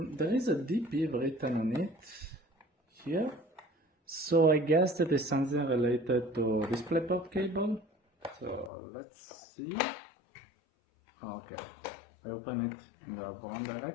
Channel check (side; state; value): right; drops out; at 8.7 s